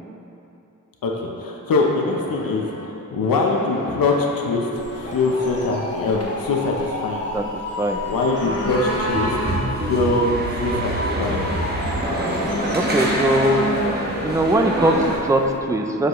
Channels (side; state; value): both; normal; correlation 0.30